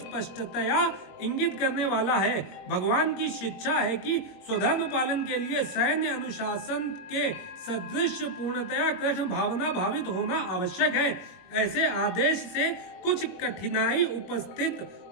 इंगित करने वाला है। भगवान की शिक्षा है कि स्वधर्म पालन के लिए सैन्य अनुशासन के सदृश पूर्णतया कृष्ण भावना भावित होना आवश्यक है। ऐसे आदेश से कुछ कठिनाई उपस्थित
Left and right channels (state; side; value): late; right; 22 ms